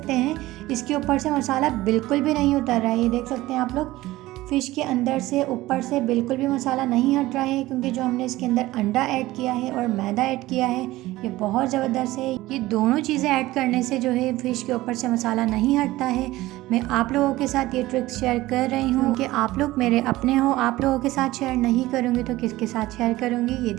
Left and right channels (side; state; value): left; quieter; 17.6 dB